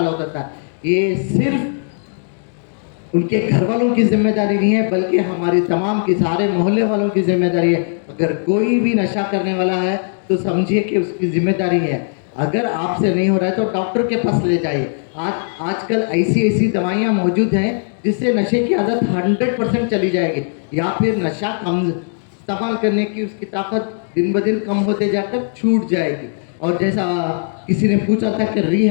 होता था। ये सिर्फ उनके घर वालों की जिम्मेदारी नहीं है, बल्कि हमारी तमाम की, सारे मोहल्ले वालों की जिम्मेदारी है। अगर कोई भी नशा करने वाला है तो समझिए कि उसकी जिम्मेदारी है। अगर आपसे नहीं हो रहा है तो डॉक्टर के पास ले जाइए। आजकल ऐसी दवाइयाँ मौजूद हैं जिससे नशे की आदत 100% चली जाएगी, या फिर नशा कम इस्तेमाल करने की उसकी ताकत दिन ब दिन कम होते जाकर छूट जाएगी। और जैसा किसी ने पूछा था कि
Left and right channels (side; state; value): right; silent; 67 dB below the other